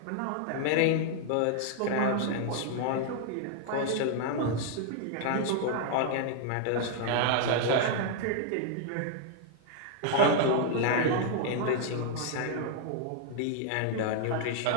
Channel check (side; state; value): both; different; correlation -0.01